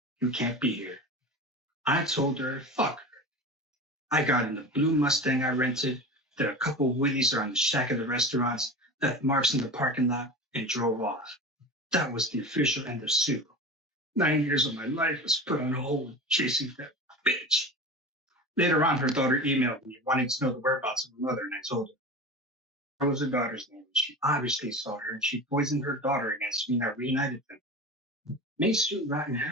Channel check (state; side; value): normal; both; correlation 0.30